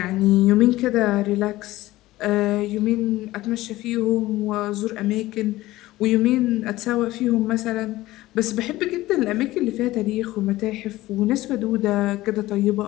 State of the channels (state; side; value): quieter; right; 17.2 dB